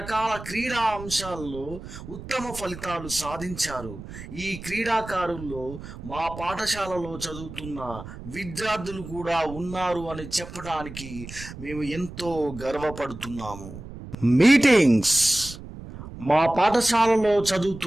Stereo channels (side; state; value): right; noise; rumble, 13 dB below the sound